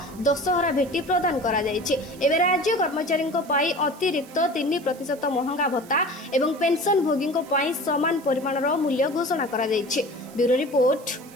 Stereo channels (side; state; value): right; noise; hiss, 22 dB below the sound